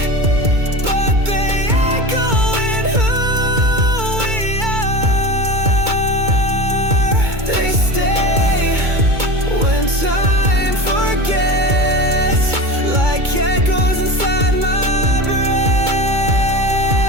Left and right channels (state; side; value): late; left; 2.2 ms